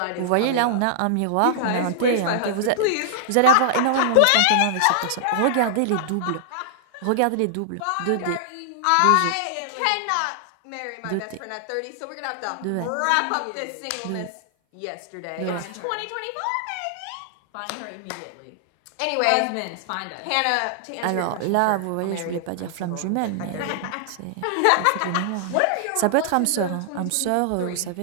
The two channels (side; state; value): both; different; correlation -0.01